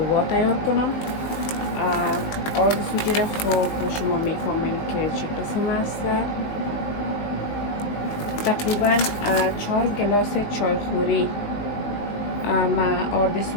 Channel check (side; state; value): right; late; 19 ms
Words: تیار کنم. آرد سوجی را خوب شما میفهمیم که چه قسم است. تقریبا 4 گلاس چایخوری من آرد